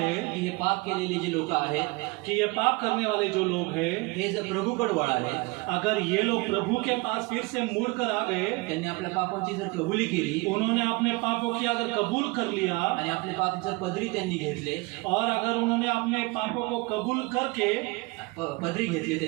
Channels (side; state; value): left; quieter; 25.3 dB